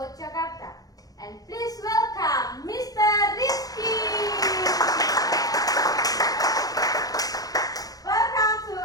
Jakarta. And please welcome Mr. Rizky. Welcome to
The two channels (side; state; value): right; late; 0.18 ms